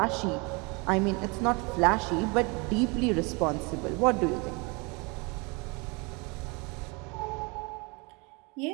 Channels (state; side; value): quieter; left; 29.3 dB